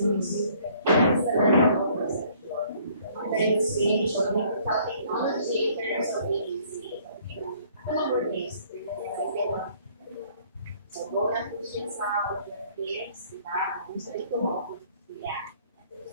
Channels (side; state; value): both; inverted; correlation -0.60